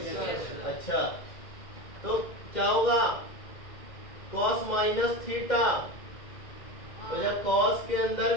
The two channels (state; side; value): late; right; 2.1 ms